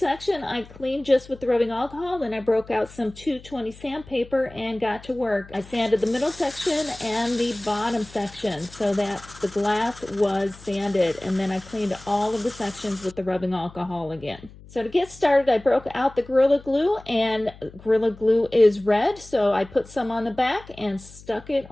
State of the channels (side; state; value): left; noise; hum, 20 dB below the sound